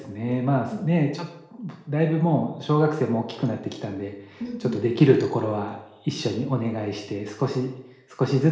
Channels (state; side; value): identical; both; correlation 1.00